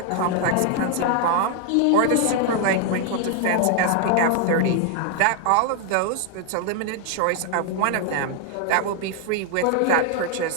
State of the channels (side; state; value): both; different; correlation 0.00